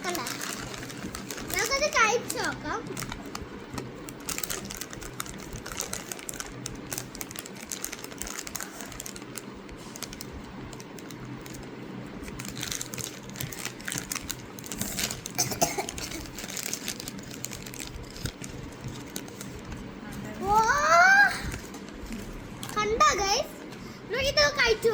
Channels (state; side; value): identical; both; correlation 1.00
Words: കണ്ട, നമുക്കത് കഴിച്ചു നോക്കാം. കണ്ട ഗൈസ്, നമുക്കിത് കഴിച്ചു